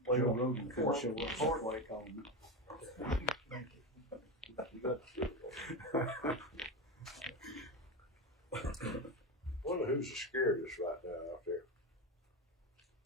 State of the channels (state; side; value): normal; both; correlation 0.17